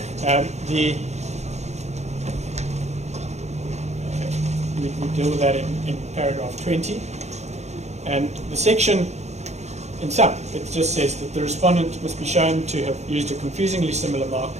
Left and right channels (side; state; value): left; late; 0.33 ms